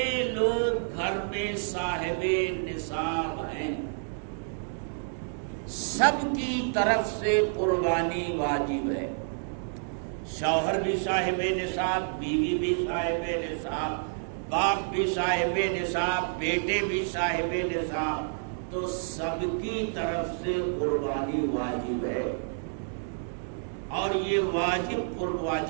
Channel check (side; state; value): left; silent; 59 dB below the other